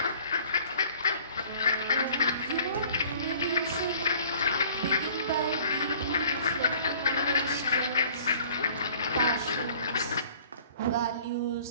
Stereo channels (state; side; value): inverted; both; correlation -0.52